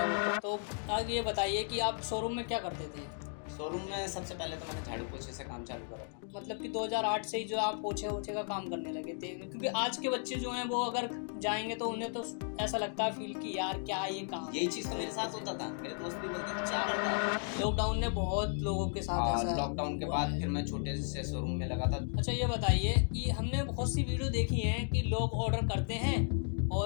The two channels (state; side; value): silent; right; 55 dB below the other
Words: वो। तो आगे ये बताइए कि आप शोरूम में क्या करते थे? शोरूम में सबसे पहले तो मैंने झाड़ू पोछे से काम चालू करा था। मतलब कि 2008 से ही जो आप पोछे वोछे का काम करने लगे थे, क्योंकि आज के बच्चे जो हैं वो अगर जाएंगे तो उन्हें तो ऐसा लगता है फील कि यार क्या ये काम। यही चीज तो मेरे साथ होता था। मेरे दोस्त भी बोलते थे क्या करता है। लॉकडाउन ने बहुत लोगों के साथ ऐसा लॉकडाउन के हुआ बाद है। फिर मैं छोटे से शोरूम में लगा था। अच्छा ये बताइए कि हमने बहुत सी वीडियो देखी है कि लोग ऑर्डर करते हैं